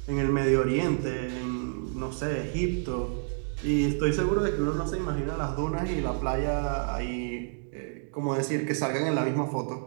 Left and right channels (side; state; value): left; silent; digital silence